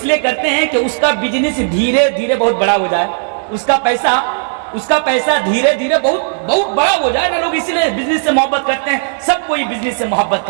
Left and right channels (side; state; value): left; silent; digital silence